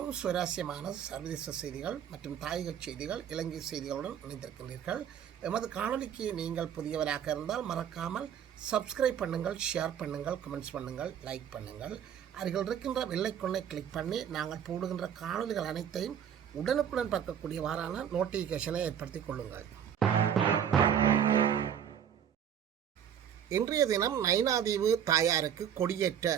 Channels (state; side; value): quieter; left; 8.9 dB